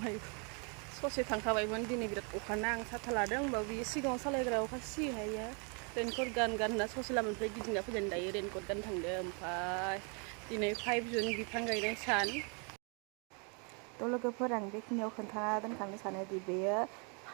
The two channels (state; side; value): quieter; left; 36.4 dB